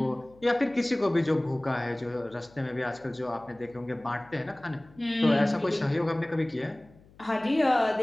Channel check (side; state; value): left; noise; hum, 26 dB below the sound